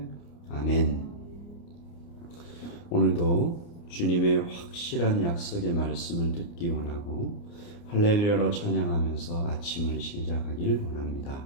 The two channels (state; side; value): late; right; 29 ms